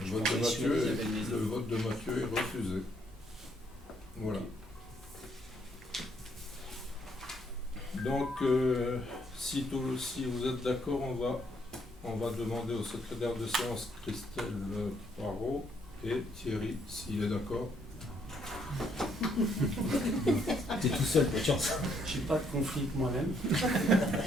Le vote de Mathieu est refusé. Voilà. Donc, si vous êtes d'accord, on va demander au secrétaire de séance Christelle Poirot et Thierry, s'il est d'accord. T'es tout seul, pas de chance. Je n'ai pas de conflit avec moi-même.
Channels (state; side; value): normal; both; correlation 0.70